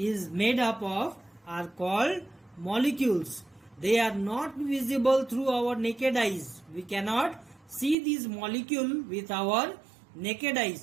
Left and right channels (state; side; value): drops out; left; at 8.0 s